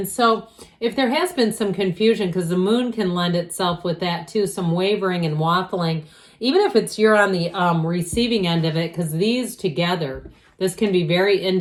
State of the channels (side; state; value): both; identical; correlation 1.00